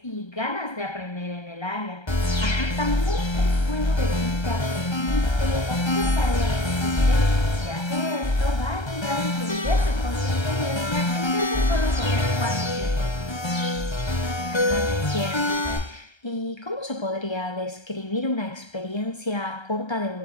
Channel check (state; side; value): late; right; 1.3 ms